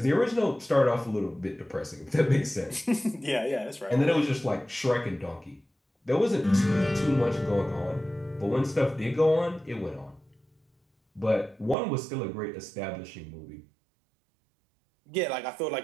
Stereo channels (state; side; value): drops out; left; at 11.8 s